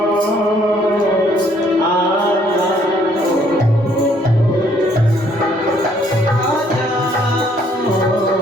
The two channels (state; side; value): normal; both; correlation 0.65